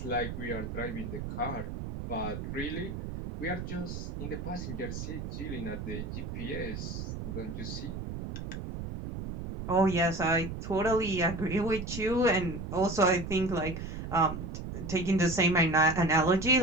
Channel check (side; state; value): right; noise; rumble, 6 dB below the sound